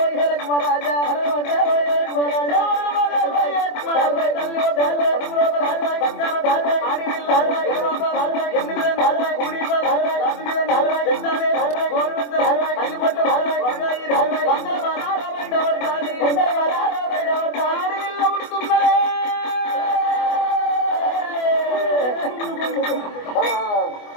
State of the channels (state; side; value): late; right; 24 ms